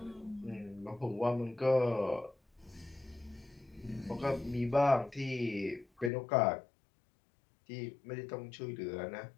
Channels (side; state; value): right; drops out; at 6.1 s